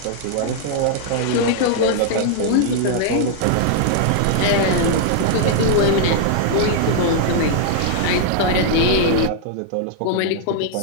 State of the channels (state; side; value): different; both; correlation -0.01